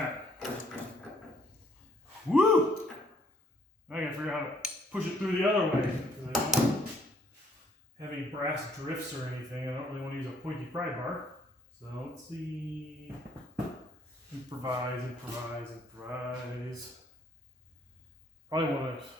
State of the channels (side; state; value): both; normal; correlation 0.64